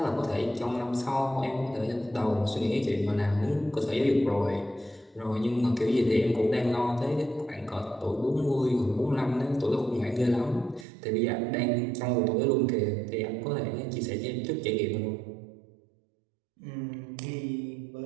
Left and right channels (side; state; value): left; drops out; at 10.9 s